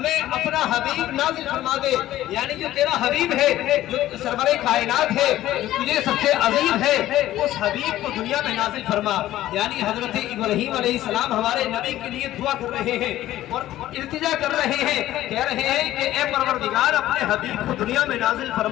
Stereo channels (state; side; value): quieter; right; 14.2 dB